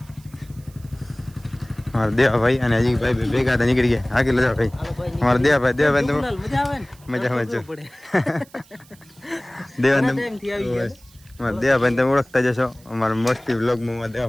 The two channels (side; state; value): right; noise; hiss, 27 dB below the sound